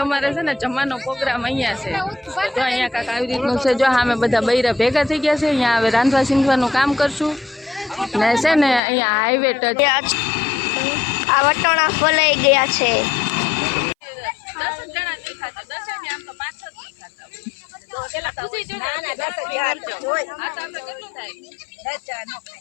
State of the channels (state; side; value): drops out; right; at 8.8 s